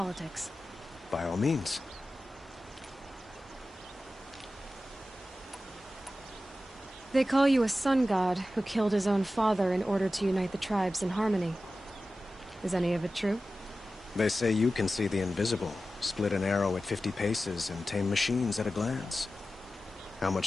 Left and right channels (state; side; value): normal; both; correlation 0.94